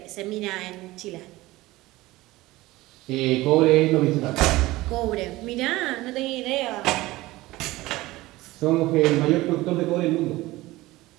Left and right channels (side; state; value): left; quieter; 18.8 dB